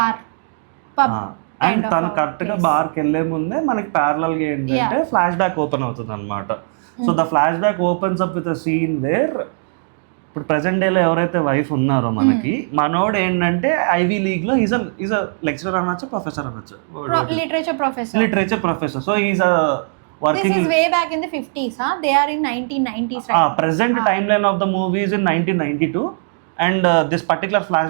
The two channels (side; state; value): left; silent; digital silence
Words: pub. And తను కరెక్ట్గా బార్కి వెళ్ళే ముందే మనకి ప్యారలల్గా ఏంటంటే ఫ్లాష్ బ్యాక్ ఓపెన్ అవుతుంది అనమాట. So the flashback opens up with a scene where ఇప్పుడు ప్రెసెంట్ డేలో ఎవరైతే వైఫ్ ఉన్నారో మనకి మనోడు ఏంటంటే ఐవీ లీగ్ లో ఈజ్ అ లెక్చరర్ అనొచ్చు, ప్రొఫెసర్ అనొచ్చు, literature professor. So is a working. This is way back in the 50s, huh? They are in 1990s, right? Present timeline of the movie is in 1992 and this particular